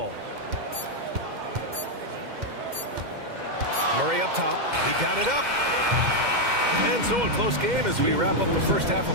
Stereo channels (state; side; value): late; left; 2.1 ms